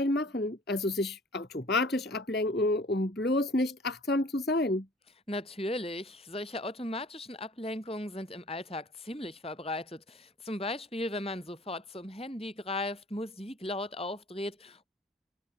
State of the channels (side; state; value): both; normal; correlation 0.49